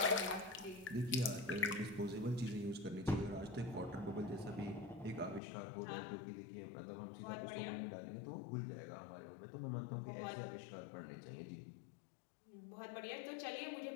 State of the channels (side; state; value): right; drops out; at 5.4 s